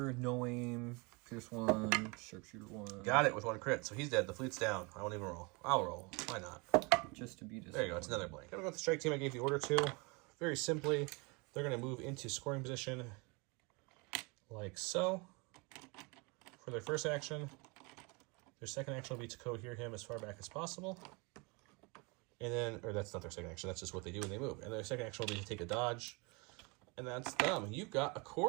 no aim, pierce 1, sharpshooter 1. Got it with 1 crit. So he's dead. The fleet's down. I won't even roll. I'll roll. Why not? Just to be disappointed. There you go. It's another blank. I'm going to go with the strike team I gave the order to. Very simply, they're going to move into scoring position like so. For their first action, their second action will be to cohere him as far back as possible. And then, or that's not their second action, that's just what they do when they move. And their second action will be to take a dodge. And that's them. You've got a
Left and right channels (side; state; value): left; quieter; 28.9 dB